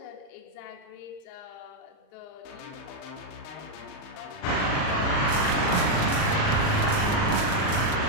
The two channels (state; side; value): late; right; 39 ms